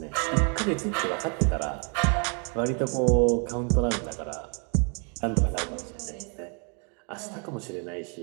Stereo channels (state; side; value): quieter; left; 38.0 dB